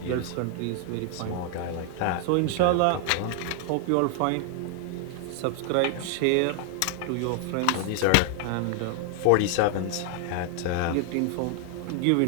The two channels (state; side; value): different; both; correlation 0.00